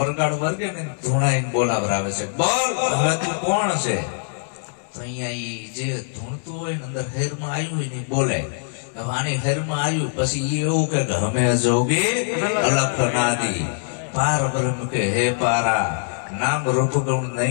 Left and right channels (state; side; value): silent; right; digital silence